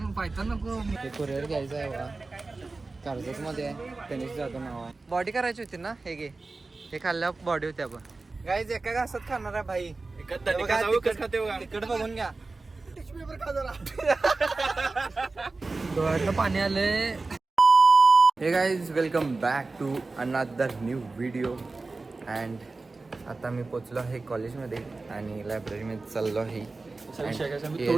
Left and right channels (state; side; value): quieter; left; 3.6 dB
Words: नको. ते कुरिअर घ्यायचं आहे बघा. कर्जत मध्ये गणेश जाधव नाव आहे. बॉडी करायची होती ना. हे घे, हे खाल्ल्यावर बॉडी होती. आपण गाईज एका घासात खाणार आहे भाई. तिकड बघून घ्या. डोळ्यातलं पाणी आलंय. हे guys welcome back to another new video. And आता मी पोचलो आहे कॉलेजमध्ये आणि लायब्ररीमध्ये चाललो आहे.